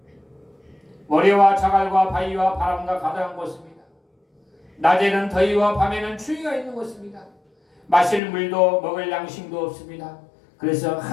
모래와 자갈과 바위와 바람과 가득한 곳입니다. 낮에는 더위와 밤에는 추위가 있는 곳입니다. 마실 물도 먹을 양식도 없습니다. 그래서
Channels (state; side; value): drops out; right; at 8.2 s